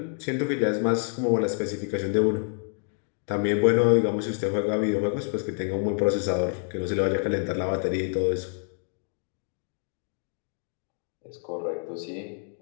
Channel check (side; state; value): right; silent; 60 dB below the other